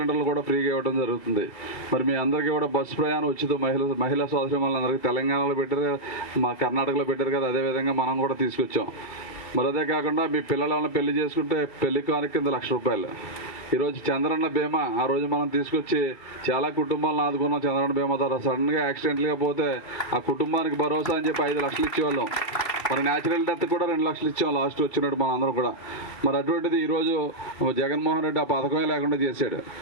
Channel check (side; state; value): right; late; 2.3 ms